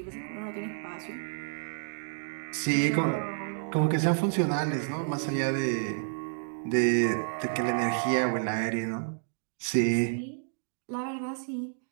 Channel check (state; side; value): silent; left; digital silence